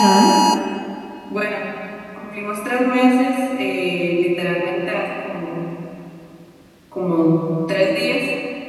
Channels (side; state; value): both; identical; correlation 1.00